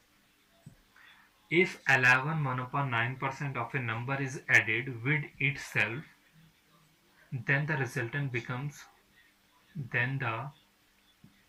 If 11 1/9% of a number is added with itself, then the resultant becomes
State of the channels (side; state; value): both; identical; correlation 1.00